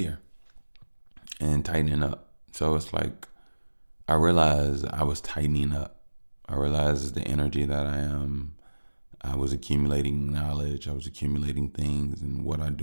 and tightening up. So it's like I realized I was tightening up. I realized the energy that I was accumulating knowledge. I was accumulating things, and what I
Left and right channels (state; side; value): inverted; both; correlation -1.00